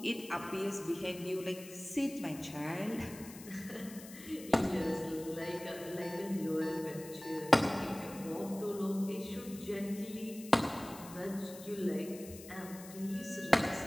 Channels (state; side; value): noise; left; hiss, 16 dB below the sound